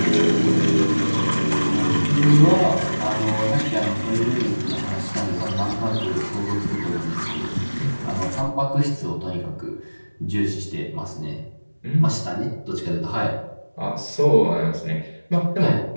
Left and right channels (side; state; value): both; inverted; correlation -1.00